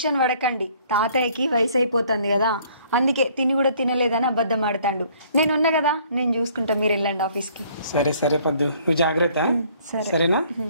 పడకండి, తాతయ్యకి వయసు అయిపోతుంది కదా, అందుకే తిని కూడా తినలేదని అబద్ధం ఆడతాడు. నేను ఉన్నా కదా, నేను చూసుకుంటా, మీరు వెళ్ళండి ఆఫీస్కి. సరే సరే పద్దు, నువ్వు జాగ్రత్త. సరేనా?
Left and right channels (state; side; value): inverted; both; correlation -0.60